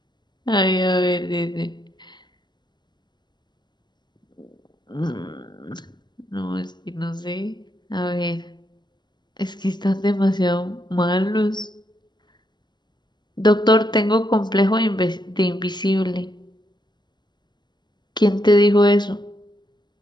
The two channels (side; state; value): right; late; 0.21 ms